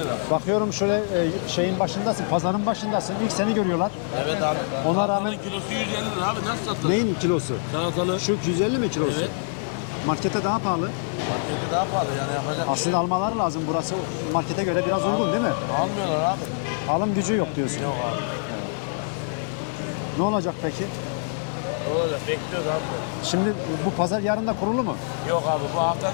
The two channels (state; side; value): silent; right; 62 dB below the other